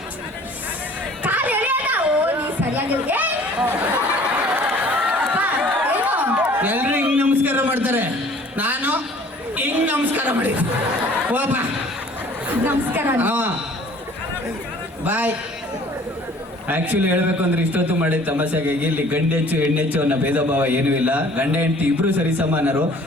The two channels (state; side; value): normal; both; correlation 0.52